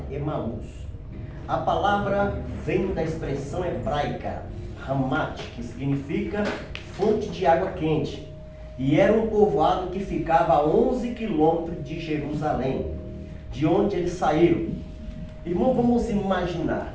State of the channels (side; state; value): both; identical; correlation 1.00